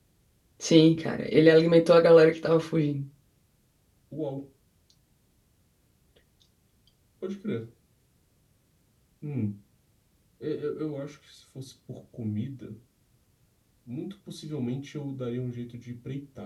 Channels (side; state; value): both; identical; correlation 1.00